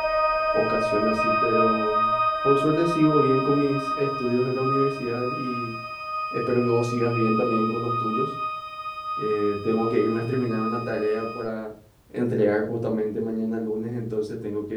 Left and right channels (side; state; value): both; identical; correlation 1.00